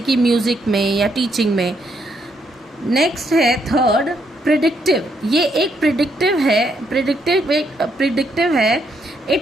कि म्यूज़िक में या टीचिंग में। नेक्स्ट है थर्ड प्रिडिक्टिव। ये एक प्रिडिक्टिव है।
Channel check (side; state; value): both; normal; correlation 0.75